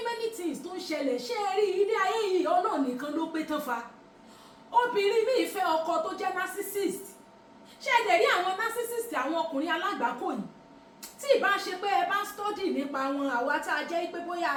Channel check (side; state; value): both; identical; correlation 1.00